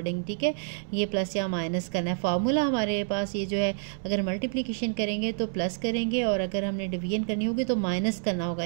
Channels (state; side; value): silent; left; 59 dB below the other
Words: ठीक है ये प्लस या माइनस करना है। फार्मूला हमारे पास ये जो है, अगर मल्टीप्लिकेशन करेंगे तो प्लस करेंगे और अगर हमने डिवीजन करनी होगी तो माइनस करना होगा,